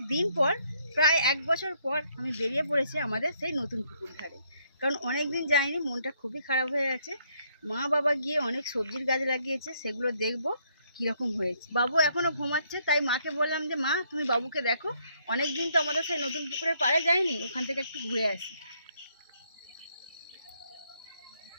দিন পর, প্রায় 1 বছর পর আমি বেরিয়ে পড়েছি আমাদের সেই নতুন পুকুর ধারে। কারণ অনেক দিন যাইনি, মনটা খুবই খারাপ হয়ে আছে। মা বাবা গিয়ে অনেক সবজির গাছ লাগিয়েছে, সেগুলো দেখবো কীরকম হয়েছে। বাবু এখনও ঘুমাচ্ছে, তাই মাকে বললাম যে মা তুমি বাবুকে দেখো, অনেক দিন তো আমাদের সেই নতুন পুকুরের পাড়ে যাইনি, ওখান থেকে একটু ঘুরে আসি।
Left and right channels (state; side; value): inverted; both; correlation -0.70